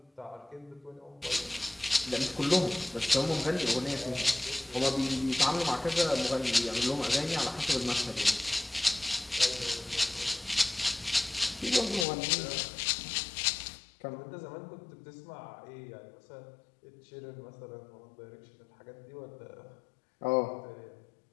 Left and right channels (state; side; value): drops out; right; at 12.1 s